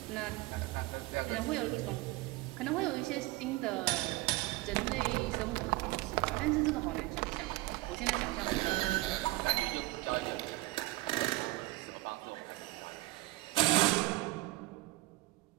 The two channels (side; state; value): left; quieter; 19.6 dB